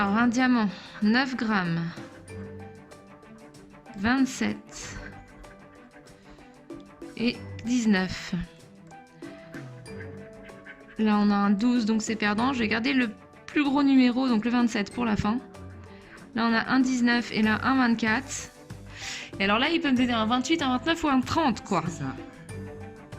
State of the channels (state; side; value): identical; both; correlation 1.00